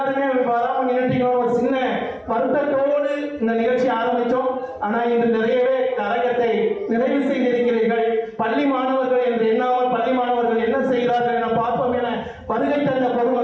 வராம நின்றுட்டீங்க. ஒரு சின்ன வருத்தத்தோடு இந்த நிகழ்ச்சி ஆரம்பித்தோம். ஆனா இன்று நிறையவே அரங்கத்தை நிறைவு செய்திருக்கிறீர்கள். பள்ளி மாணவர்கள் என்று எண்ணாமல் பள்ளி மாணவர்கள் என்ன செய்கிறார்கள் என பார்ப்போம் என வருகை தந்த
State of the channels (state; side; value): identical; both; correlation 1.00